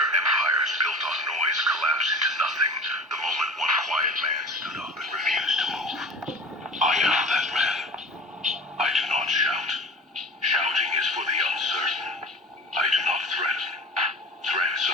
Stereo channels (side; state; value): both; normal; correlation 0.39